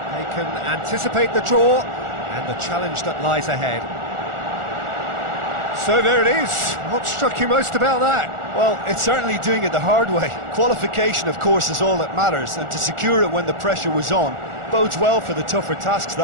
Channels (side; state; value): left; late; 1.4 ms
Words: They can anticipate the draw and the challenge that lies ahead. So there it is. What struck you most about that? Well, it's certainly doing it the hard way. Qualification, of course, is all that matters, and to secure it when the pressure was on bodes well for the tougher tasks